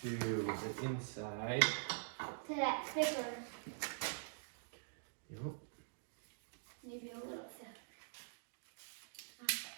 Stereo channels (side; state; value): left; silent; digital silence